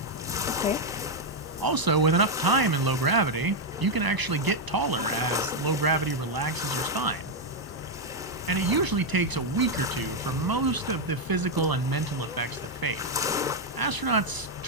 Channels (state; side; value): normal; both; correlation 0.01